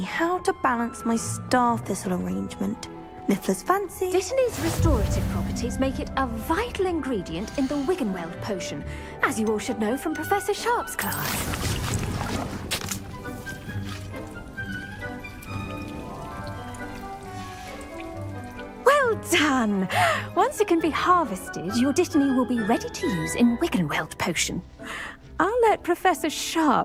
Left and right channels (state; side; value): identical; both; correlation 1.00